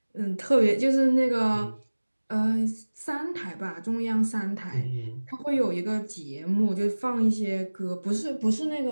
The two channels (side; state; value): both; inverted; correlation -1.00